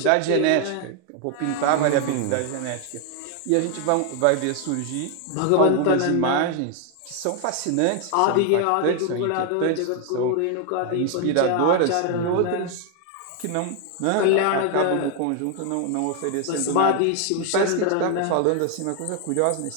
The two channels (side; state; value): both; different; correlation 0.00